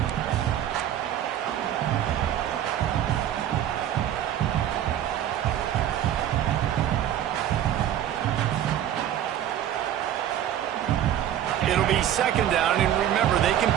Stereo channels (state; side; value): quieter; left; 11.0 dB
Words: It'll be 2nd down, and remember, they can